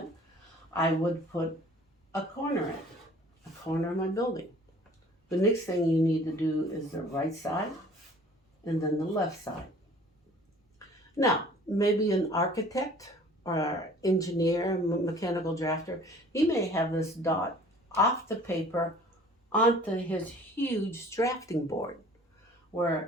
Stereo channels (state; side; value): normal; both; correlation 0.50